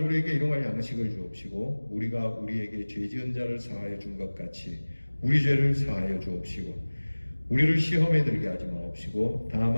우리에게 일용할 양식을 주옵시고 우리가 우리에게 죄 지은 자를 사하여 준 것 같이 우리 죄를 사하여 주옵시고 우리를 시험에 들게 하지 마옵시고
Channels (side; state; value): both; inverted; correlation -1.00